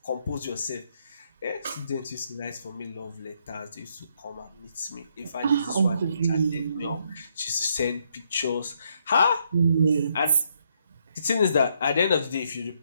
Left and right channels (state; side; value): inverted; both; correlation -0.74